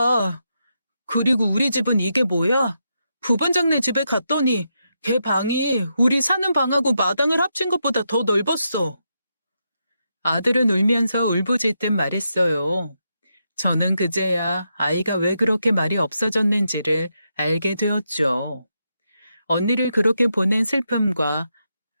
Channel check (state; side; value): inverted; both; correlation -0.83